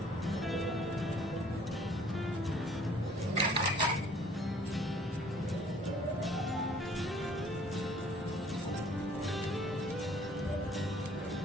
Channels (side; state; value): both; normal; correlation 0.56